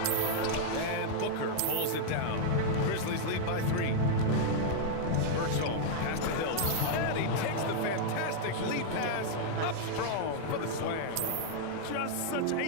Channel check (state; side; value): different; both; correlation -0.01